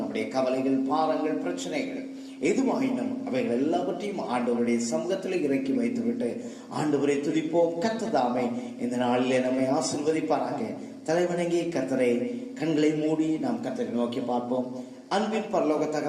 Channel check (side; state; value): both; identical; correlation 1.00